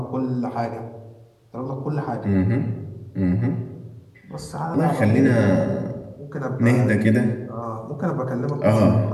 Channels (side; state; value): both; identical; correlation 1.00